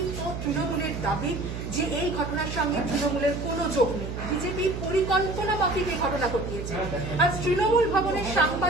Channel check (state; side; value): noise; right; hum, 6 dB below the sound